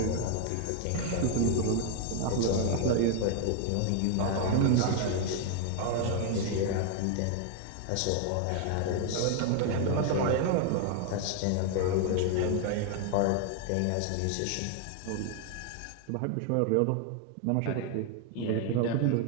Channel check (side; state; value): both; different; correlation 0.00